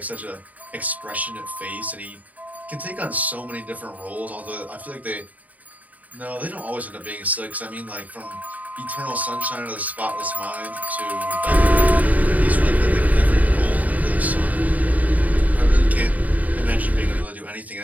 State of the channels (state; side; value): late; left; 0.074 ms